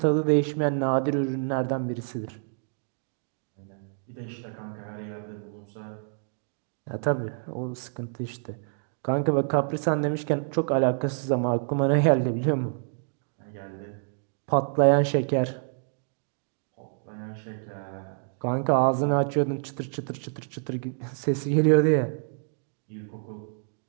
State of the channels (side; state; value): left; silent; 60 dB below the other